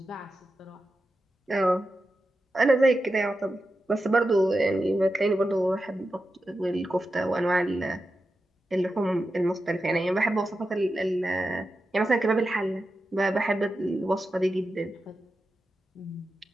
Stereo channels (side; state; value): both; normal; correlation 0.90